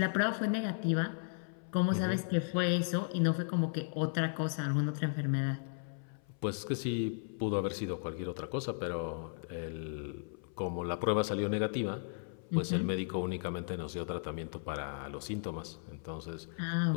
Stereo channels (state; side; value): silent; right; 54 dB below the other